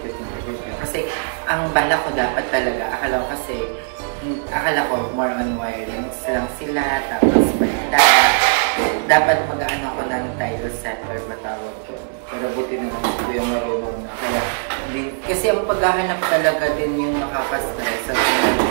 you kuya. Kasi ang bala ko dapat talaga, akala ko more on wirings lang sila, tapos bintana. Dapat mag-ano ko ng tile set or matawag doon. Pero buti na lang si kuya marunong na. Kaya, kasi ang paghahanap talaga din yung nakaka-stress at yung medyo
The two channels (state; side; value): silent; left; digital silence